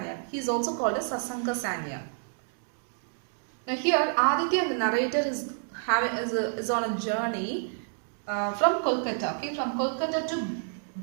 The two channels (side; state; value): left; silent; digital silence